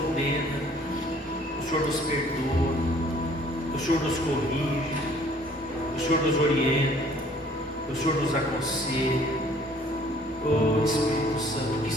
o Senhor nos perdoa, o Senhor nos corrige, o Senhor nos orienta, o Senhor nos aconselha. Oh, Espírito Santo, o que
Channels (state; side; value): normal; both; correlation 0.57